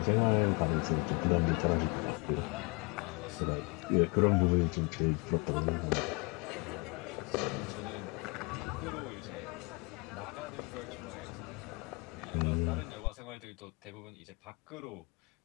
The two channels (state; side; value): quieter; right; 29.1 dB